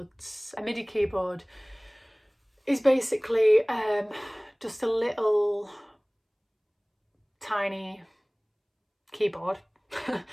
A MIDI keyboard is basically just a little tiny keyboard, a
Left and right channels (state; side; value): identical; both; correlation 1.00